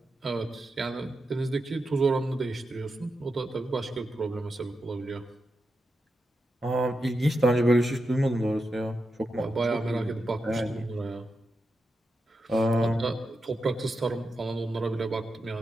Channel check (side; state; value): both; normal; correlation 0.88